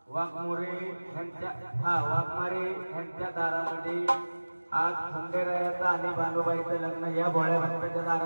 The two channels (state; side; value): inverted; both; correlation -1.00